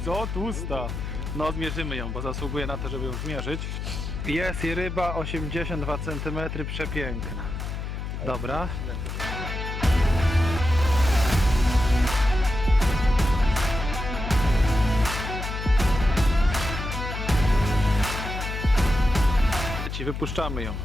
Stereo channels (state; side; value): noise; left; hum, 5 dB below the sound